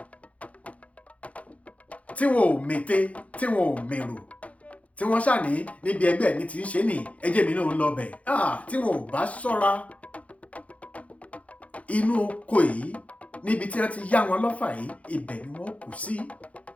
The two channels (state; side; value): late; right; 0.066 ms